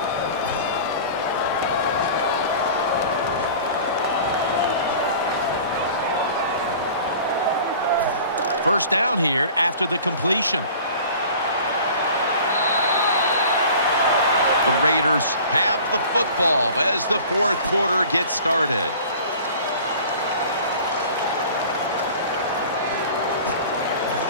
First down here after the completion. The Raiders have the football as the fourth quarter gets started.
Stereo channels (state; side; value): inverted; both; correlation -0.43